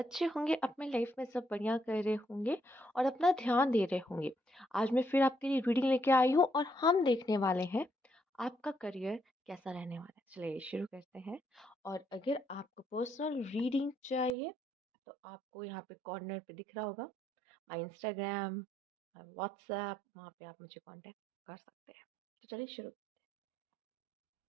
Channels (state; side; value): drops out; left; at 14.4 s